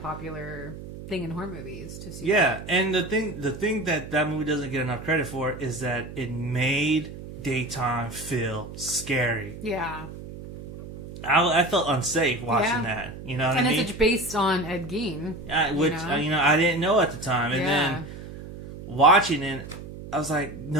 thing in horror movies to see. Yeah, that. And the thing that movie doesn't get enough credit for is that it made daytime feel scary. Yeah. I felt unsafe watching that. You know what I mean? And it's based on Ed Gein. Which, I didn't know at the time. And then watching it, I was like,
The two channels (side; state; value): right; noise; hum, 12 dB below the sound